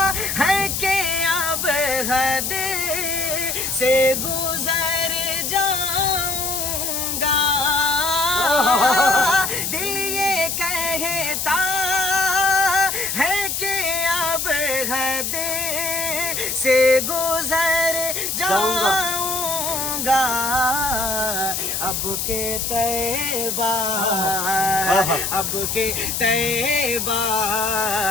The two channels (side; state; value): left; noise; hiss, 1 dB below the sound